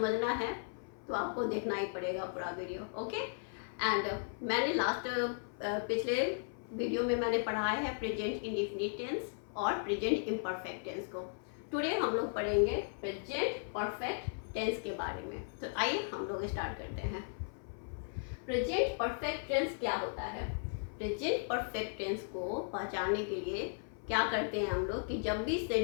है तो आपको देखना ही पड़ेगा पूरा वीडियो। ओके, एंड मैंने पिछले वीडियो में मैंने पढ़ाया है प्रेजेंट इंडेफिनिट टेंस और प्रेजेंट इम्परफेक्ट टेंस को। टुडे हम लोग पढ़ेंगे प्रेजेंट परफेक्ट टेंस के बारे में। तो आइए हम लोग स्टार्ट करते हैं। प्रेजेंट परफेक्ट टेंस क्या होता है? प्रेजेंट परफेक्ट टेंस को पहचानने के लिए क्या करते हैं हम लोग कि जब भी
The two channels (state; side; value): silent; right; 54 dB below the other